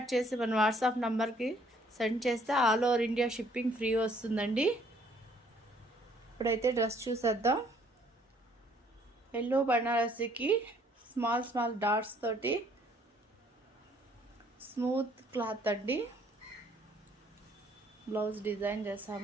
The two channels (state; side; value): normal; both; correlation 0.62